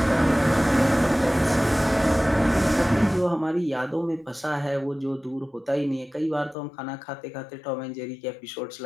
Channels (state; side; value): drops out; right; at 6.6 s